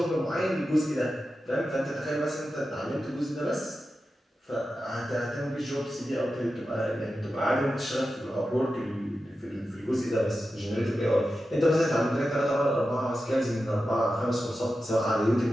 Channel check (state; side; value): normal; both; correlation 0.92